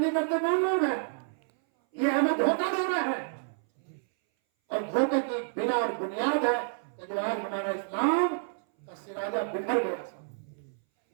करते कौन लोग हैं? ये हमें धोखा दे रहा है और धोखे की बिना और बुनियाद है कि जो आज हमारा इस्लाम का सिराजा बिखर गया।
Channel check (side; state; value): left; silent; 58 dB below the other